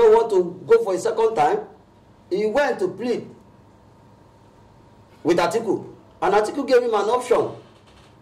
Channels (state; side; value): identical; both; correlation 1.00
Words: wanted to go for a second time, he went to plead with Atiku. And Atiku gave him an option